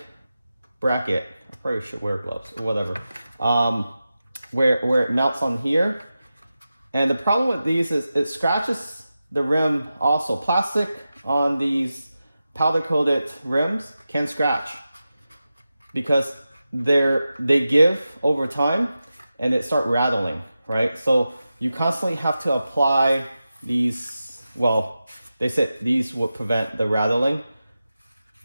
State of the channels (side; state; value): both; inverted; correlation -0.92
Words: bracket. I probably should wear gloves or whatever. Where it mounts on here. And the problem with these is it scratches the rim also. Plastic on these powder coated rims can scratch because they give over time and it start rattling, right? So you constantly have to apply these, well, they said these would prevent the rattling.